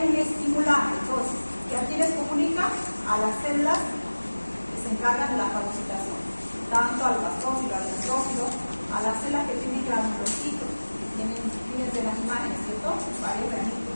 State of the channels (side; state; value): both; inverted; correlation -1.00